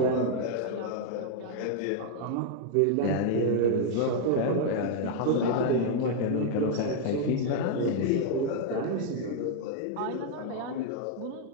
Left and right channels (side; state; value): both; different; correlation 0.00